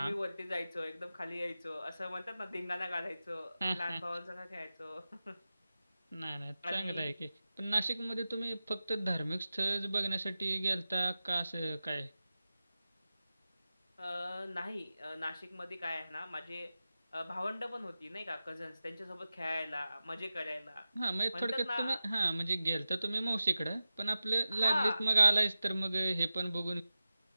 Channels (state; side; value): inverted; both; correlation -0.94